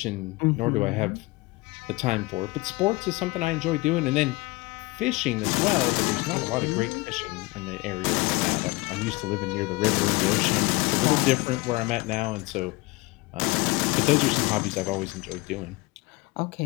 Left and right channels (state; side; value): quieter; right; 22.9 dB